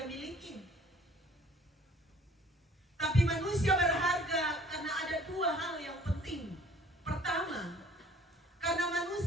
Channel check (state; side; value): normal; both; correlation 0.54